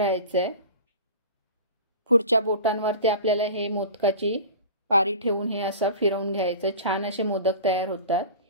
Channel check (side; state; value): both; inverted; correlation -0.36